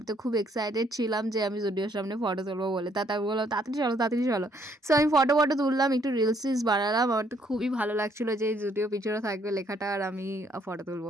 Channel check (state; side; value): normal; both; correlation 0.68